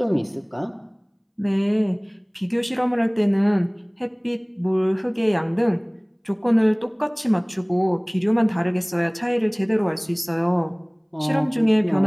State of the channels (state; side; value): identical; both; correlation 1.00